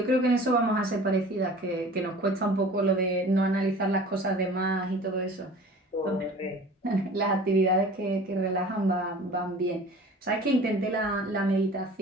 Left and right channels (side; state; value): both; normal; correlation 0.43